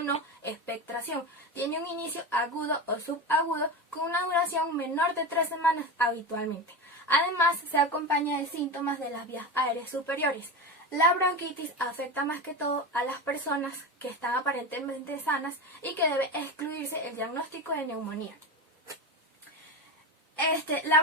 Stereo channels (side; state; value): both; normal; correlation 0.22